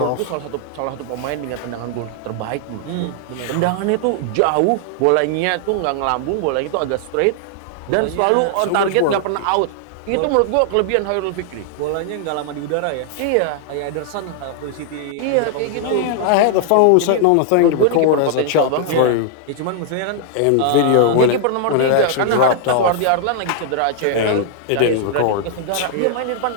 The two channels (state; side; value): different; both; correlation -0.01